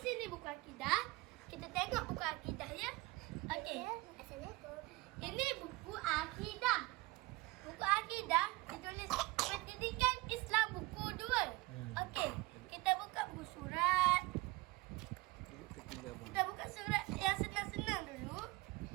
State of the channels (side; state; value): left; quieter; 21.7 dB